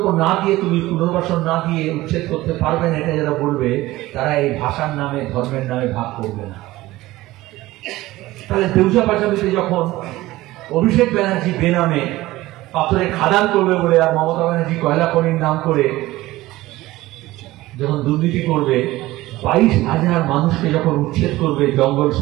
না দিয়ে, তুমি পুনর্বাসন না দিয়ে উচ্ছেদ করতে পারবে না, এটা যারা বলবে, তারা এই ভাষার নামে ধর্মের নামে ভাগ করবে না। তাহলে দেউচা পাশাপাশি যখন অভিষেক ব্যানার্জি বেনামে পাথরে খাদান করবে বলে, আর মমতা ব্যানার্জি কয়লা খনির নাম করে যখন দুর্নীতি করবে, 22,000 মানুষকে যখন উচ্ছেদ করবে, জঙ্গল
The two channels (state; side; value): quieter; left; 17.7 dB